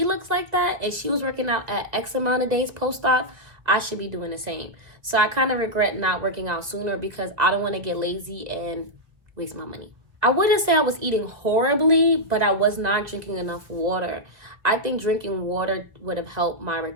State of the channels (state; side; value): late; left; 2.0 ms